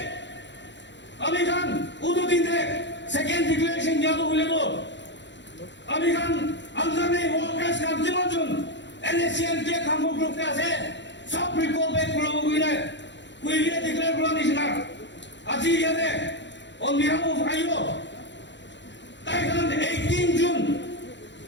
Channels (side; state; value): right; late; 0.52 ms